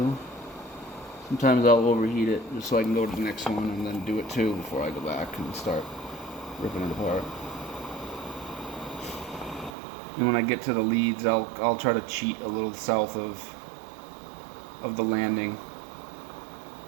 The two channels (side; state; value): left; drops out; at 9.7 s